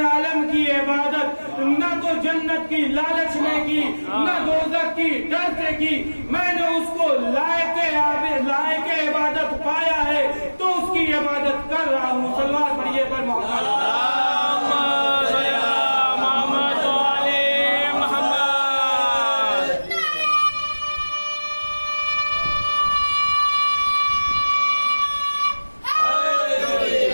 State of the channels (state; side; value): inverted; both; correlation -1.00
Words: عالم کی عبادت نہ تو جنت کی لالچ میں کی، نہ دوزخ کی ڈر سے کی. میں نے اس کو لائق عبادت پایا ہے تو اس کی عبادت کر رہا ہوں. صلوات پڑھیے پر